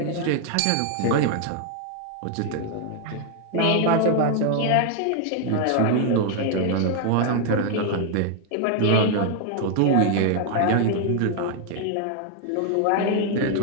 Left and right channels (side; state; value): both; different; correlation 0.00